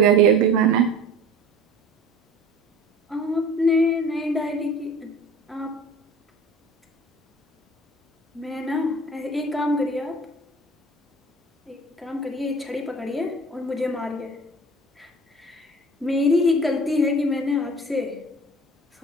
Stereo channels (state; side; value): normal; both; correlation 0.42